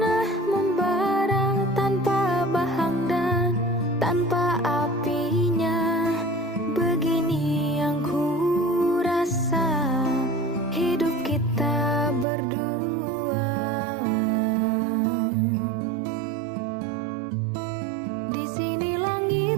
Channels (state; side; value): drops out; left; at 12.2 s